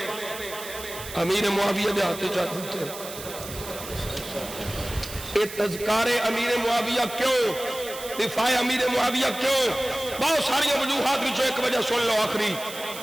امیر معاویہ دے ہاتھ چاہتے تھے یہ تذکار امیر معاویہ کیوں دفاع امیر معاویہ کیوں بہت ساری وجوہات بھی جو ایک وجہ سن لو آخری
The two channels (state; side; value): noise; right; hiss, 12 dB below the sound